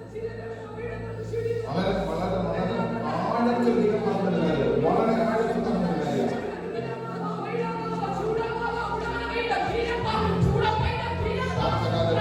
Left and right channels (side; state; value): both; identical; correlation 1.00